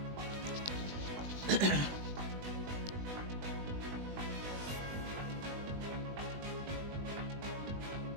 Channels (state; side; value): late; left; 20 ms